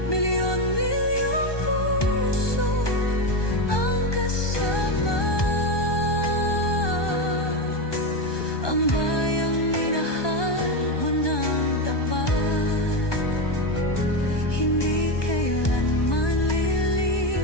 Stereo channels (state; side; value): late; right; 1.2 ms